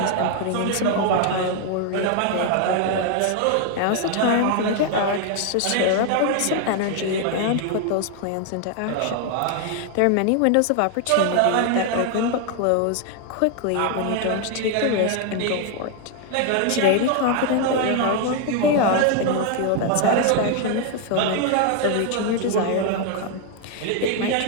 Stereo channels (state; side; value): different; both; correlation 0.00